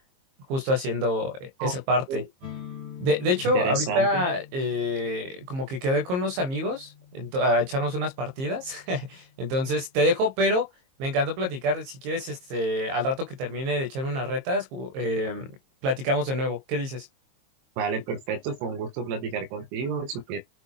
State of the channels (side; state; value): left; late; 22 ms